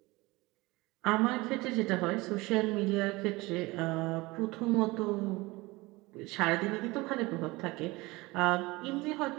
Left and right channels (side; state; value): left; quieter; 22.1 dB